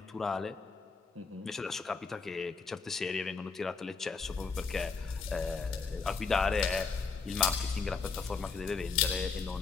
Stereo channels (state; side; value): quieter; right; 4.9 dB